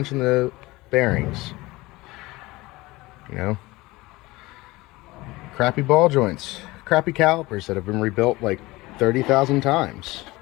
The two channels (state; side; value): quieter; right; 20.7 dB